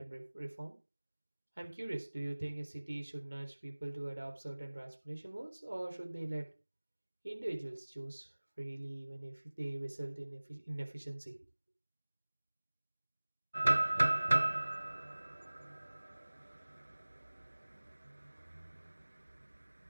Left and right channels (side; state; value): both; inverted; correlation -1.00